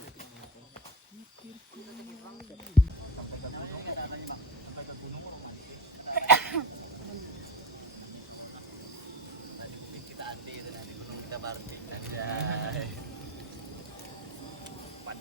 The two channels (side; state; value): both; normal; correlation 0.27